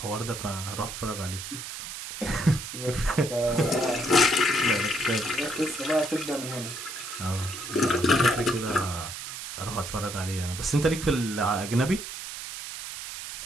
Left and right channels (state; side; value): noise; right; hiss, 8 dB below the sound